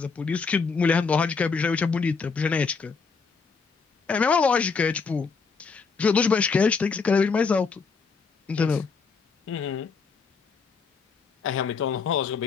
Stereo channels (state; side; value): quieter; right; 5.1 dB